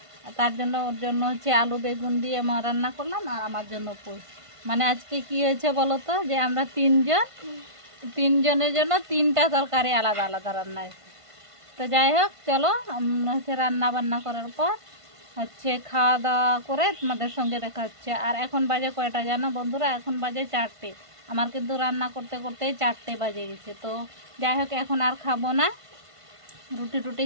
তার জন্য ওর জন্য হচ্ছে আলু বেগুন দিয়ে আমার রান্না করলাম আর আমার জন্য পুঁই। মানে আজকে কি হয়েছে বলো তো, যে আমরা 3 জন, 3 জনের জন্য 3টা তরকারি আলাদা আলাদা রান্না হয়েছে। তো যাই হোক চলো হচ্ছে রান্না বান্না করার পর হচ্ছে খাওয়া দাওয়া করে তোমাদের সঙ্গে দেখা হচ্ছে। আর এখন বাজে কয়টা জানো বন্ধুরা? এখন বাজে 4টে। আমার কিন্তু রান্না করতে করতেই 4টে বাজে গেছে। তো যাই হোক এখন আর খাবো না, রুটি টুটি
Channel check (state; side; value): late; left; 1.5 ms